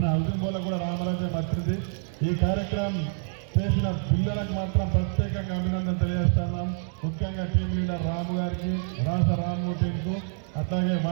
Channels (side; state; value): left; silent; 55 dB below the other